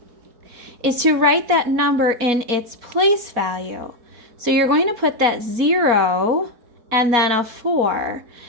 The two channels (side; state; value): left; late; 4.2 ms